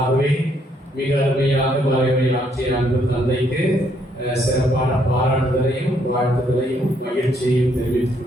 ஆகவே மிக அருமையாக மறைவுரை ஆற்றிய அன்பு தந்தைக்கு சிறப்பான பாராட்டுதலையும் வாழ்த்துதலையும் மகிழ்ச்சியையும்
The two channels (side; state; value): both; normal; correlation 0.71